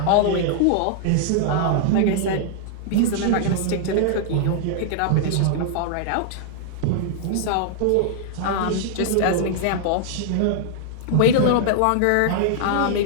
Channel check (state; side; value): different; both; correlation -0.01